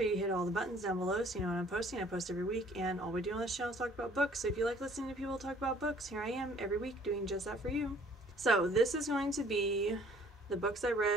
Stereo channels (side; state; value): both; normal; correlation 0.57